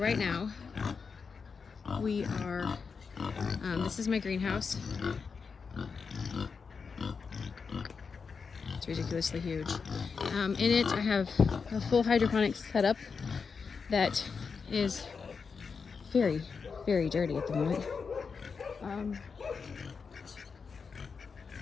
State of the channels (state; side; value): quieter; right; 5.4 dB